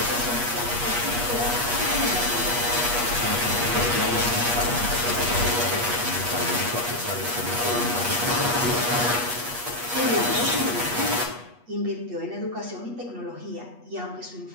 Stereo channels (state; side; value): late; left; 8.3 ms